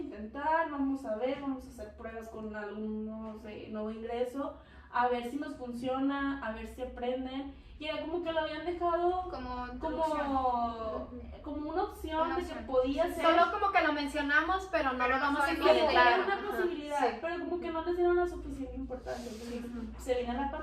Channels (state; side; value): identical; both; correlation 1.00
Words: vamos a ver, vamos a hacer pruebas con alumnos de nuevo ingreso, a ver si nos funciona, a ver si aprenden. Y era como que lo habían dejado Como introducción. como una opción Una de que opción. podía ser. Solo como que lo mencionamos, pero no Pero lo no vamos a sabemos Como que implementar. era una Ajá. posibilidad, Sí. pero como que no les dieron la suficiente importancia. Entonces, se vino la